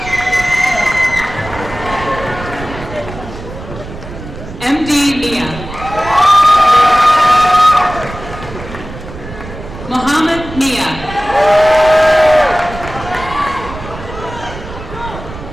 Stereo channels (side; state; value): right; noise; rumble, 12 dB below the sound